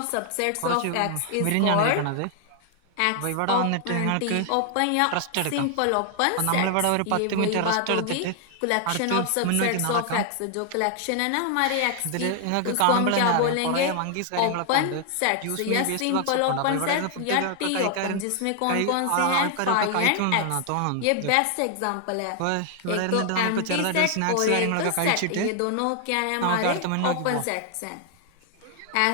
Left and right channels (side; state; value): both; different; correlation 0.00